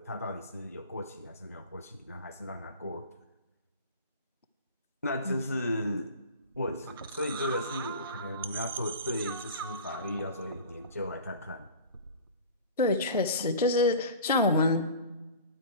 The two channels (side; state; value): both; inverted; correlation -0.38